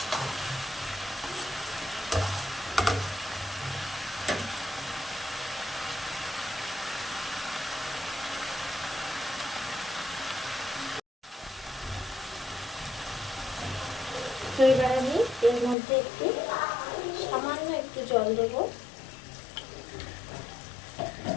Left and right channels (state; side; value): drops out; right; at 15.8 s